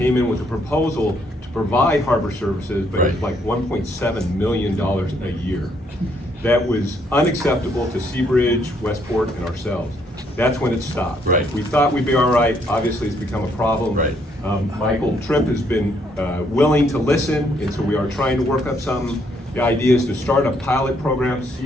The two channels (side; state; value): both; normal; correlation 0.70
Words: in with a proposal to provide harbor services, but it was like $1.7 million a year. That was unacceptable to Seabridge, Westport, and ourselves. That's when it stopped. Right. We thought we'd be all right. Obviously, it's become a problem. Right. Michael Tripp has been willing to listen, and so we are trying to work up some ideas to start a pilot program,